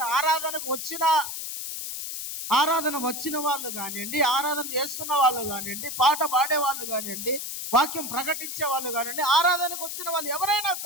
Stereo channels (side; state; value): left; noise; hiss, 6 dB below the sound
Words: ఆరాధన వచ్చిన వాళ్ళు కానివ్వండి, ఆరాధన చేస్తున్న వాళ్ళు కానివ్వండి, పాట పాడే వాళ్ళు కానివ్వండి, వాక్యం ప్రకటించే వాళ్ళు కానివ్వండి, ఆరాధనకు వచ్చిన వాళ్ళు ఎవరైనా